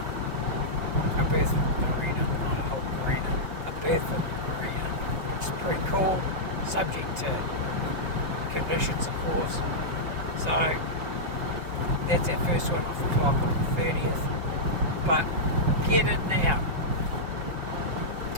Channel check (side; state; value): left; late; 5.7 ms